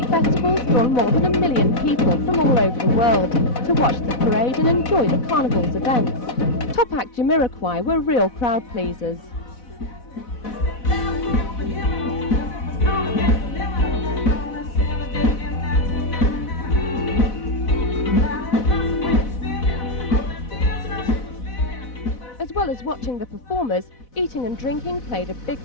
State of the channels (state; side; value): late; right; 4.1 ms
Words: festivals draw more than 1 million people from all over the world to watch the parade and enjoy the Carnival's events. Top act Jamiroquai were real crowd pleasers. watching the performers, eating and drinking played a big